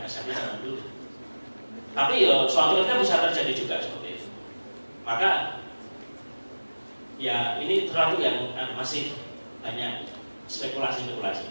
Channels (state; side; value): inverted; both; correlation -1.00